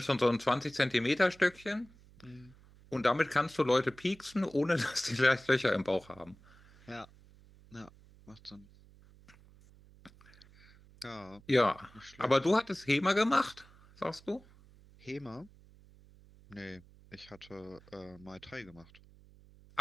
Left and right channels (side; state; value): right; noise; hum, 25 dB below the sound